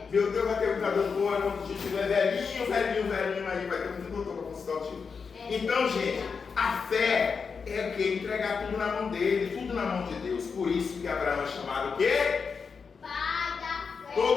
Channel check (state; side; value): quieter; right; 5.5 dB